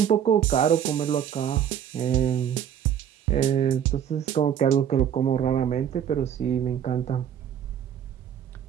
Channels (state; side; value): quieter; left; 9.2 dB